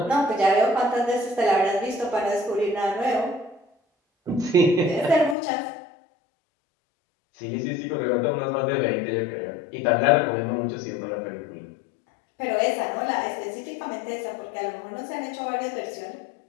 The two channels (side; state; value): right; drops out; at 5.4 s